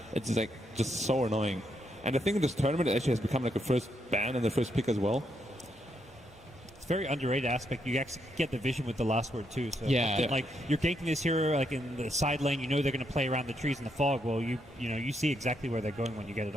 It's just so annoying. And I think in this tournament it actually has become like a first ban and the first pick as well. It's a very underrated aspect. You actually get the vision with the last word too. So like you're ganking this hero like in the side lane, you know they're going to play around the trees in the fog. Well, you see exactly where they're going when you get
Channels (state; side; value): normal; both; correlation 0.78